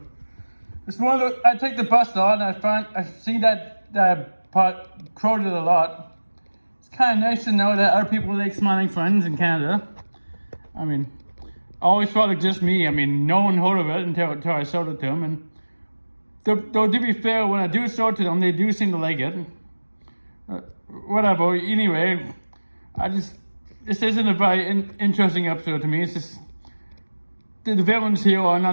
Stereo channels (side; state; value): both; inverted; correlation -1.00